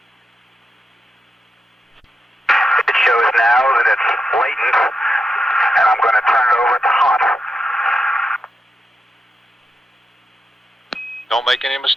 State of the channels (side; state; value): both; normal; correlation 0.85